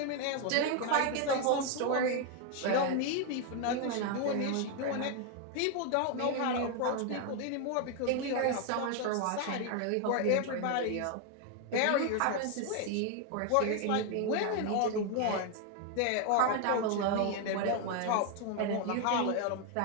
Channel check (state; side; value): different; both; correlation 0.01